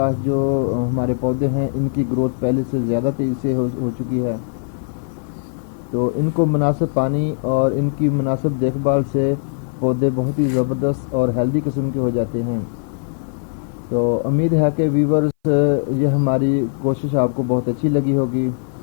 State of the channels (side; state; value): right; silent; 60 dB below the other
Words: जो हमारे पौधे हैं इनकी ग्रोथ पहले से ज़्यादा तेज़ी से हो चुकी है। तो इनको मुनासिब पानी और इनकी मुनासिब देखभाल से पौधे बहुत ही ज़बरदस्त और हेल्दी किस्म के हो जाते हैं। तो उम्मीद है कि व्यूवर्स ये हमारी कोशिश आपको बहुत अच्छी लगी होगी।